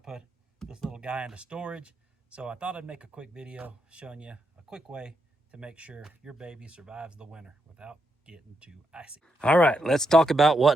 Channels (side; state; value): both; normal; correlation 0.82